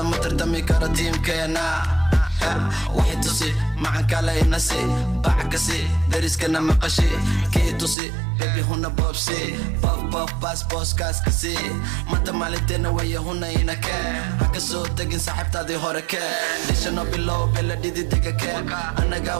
tardami karo tiimkeena waxay tusi macan kale inasi bacakasi dariskana maqashi kii tusi bebi huna boobsi bof bas booskaaskasi manta maalinteena waya huna inake haka soo tegin saaxiibtaadii hore kee dhishano bilow bela dhididega kee anaga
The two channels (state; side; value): drops out; left; at 8.0 s